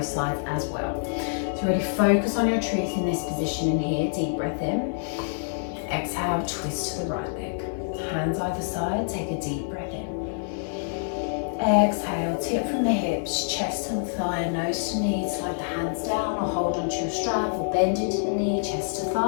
sides as well. So really focus on your truth in this position in here. Deep breath in. Exhale, twist to the right leg. Hands either side, take a deep breath in. Exhale, tip from the hips, chest to the thigh, nose to knee, slide the hands down or hold onto your strap or bend into the knee, chest to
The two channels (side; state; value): right; silent; 61 dB below the other